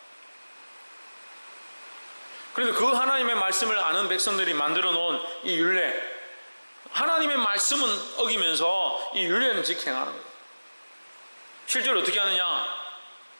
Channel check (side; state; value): both; inverted; correlation -1.00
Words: 그런데 그 하나님의 말씀을 아는 백성들이 만들어 놓은 이 율례, 하나님의 말씀은 어기면서 이 율례는 직행하는 거예요. 실제로 어떻게 하느냐?